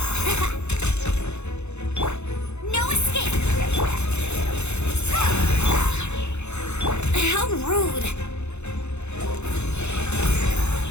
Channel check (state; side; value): late; right; 0.81 ms